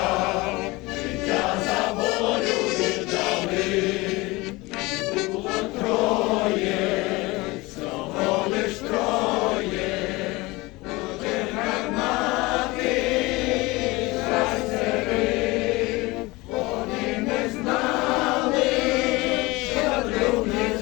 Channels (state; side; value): quieter; right; 22.4 dB